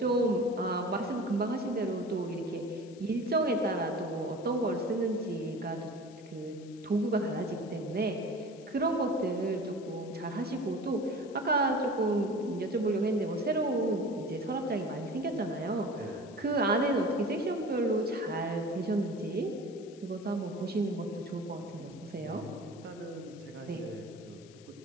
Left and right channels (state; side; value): noise; left; hiss, 24 dB below the sound